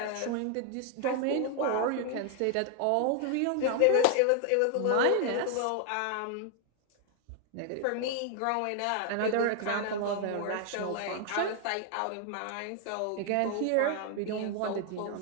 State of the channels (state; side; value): different; both; correlation 0.00